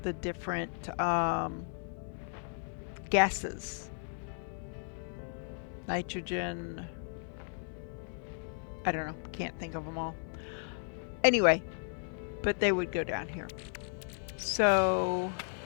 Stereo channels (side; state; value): right; silent; 55 dB below the other